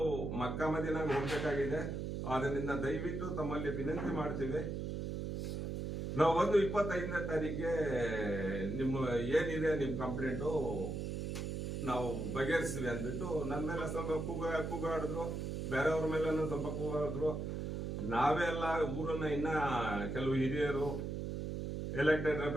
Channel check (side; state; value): right; noise; hum, 3 dB below the sound